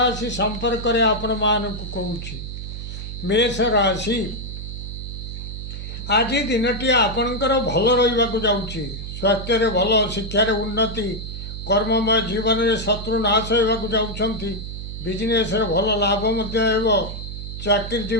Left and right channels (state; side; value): noise; right; hum, 8 dB below the sound